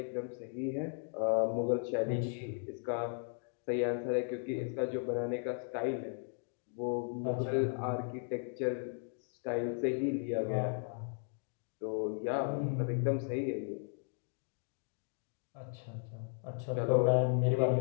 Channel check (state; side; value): silent; right; 54 dB below the other